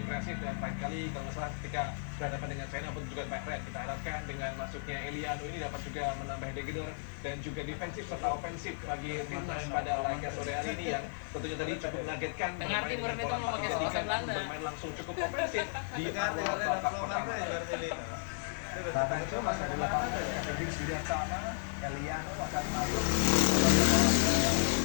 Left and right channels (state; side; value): silent; right; digital silence